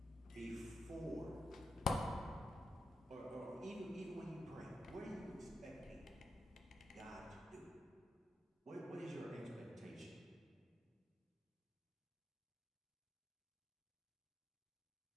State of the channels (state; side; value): normal; both; correlation 0.86